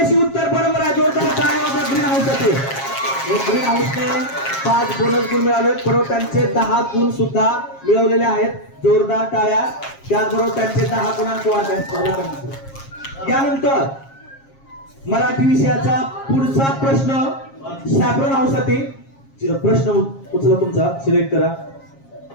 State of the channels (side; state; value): right; late; 7.4 ms